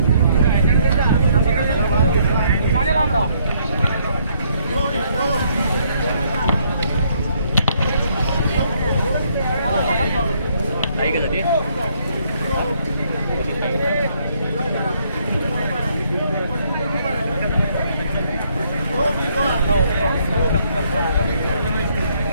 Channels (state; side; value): inverted; both; correlation -0.69